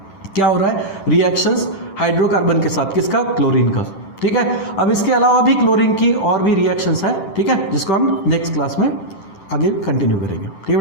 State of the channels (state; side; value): late; right; 10 ms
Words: क्या हो रहा है, रिएक्शंस हाइड्रोकार्बन के साथ, किसका, क्लोरीन का। ठीक है, अब इसके अलावा भी क्लोरीन की और भी रिएक्शंस है, ठीक है, जिसको हम नेक्स्ट क्लास में आगे कंटिन्यू करेंगे। ठीक है